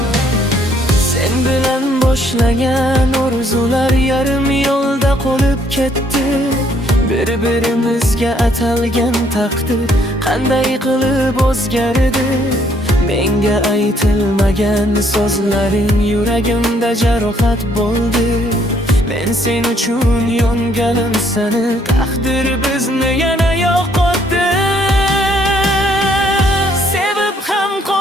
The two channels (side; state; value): both; normal; correlation 0.67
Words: Sen bilan boshlagan orzular yarim yo'lda qolib ketdi. Bir-birimizga atalgan taqdir qanday qilib o'zgardi. Menga aytilmagan so'zlaring yuragimda jarohat bo'ldi. Men sen uchun yonganim seni, taqdir bizni yana yo'qotdi. Sevib ham